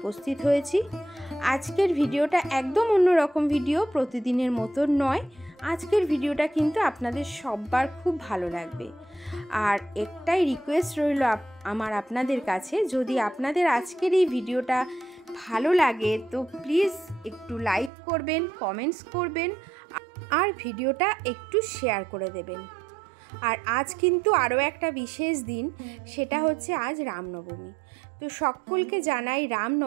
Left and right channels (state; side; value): drops out; left; at 17.9 s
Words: হয়েছি। আজকের ভিডিওটা একদম অন্যরকম ভিডিও, প্রতিদিনের মতন নয়। আজকের ভিডিওটা কিন্তু আপনাদের সবার খুব ভালো লাগবে। আর একটাই রিকোয়েস্ট রইল আমার আপনাদের কাছে, যদি আপনাদের আজকের এই ভিডিওটা ভালো লাগে তো প্লিজ একটু লাইক করবেন, কমেন্টস করবেন আর ভিডিওটা একটু শেয়ার করে দেবেন। আর আজ কিন্তু আরও একটা বিশেষ দিন, সেটা হচ্ছে আজ রামনবমী। তো সকলকে জানাই